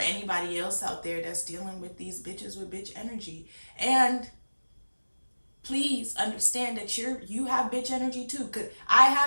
else out there that's dealing with these bitches with bitch energy. And please understand that you have bitch energy too. Cause I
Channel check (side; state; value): both; inverted; correlation -1.00